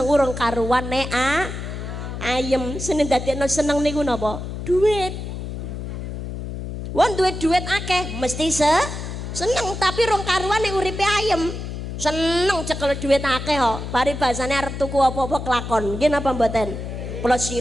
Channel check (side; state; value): left; noise; hum, 7 dB below the sound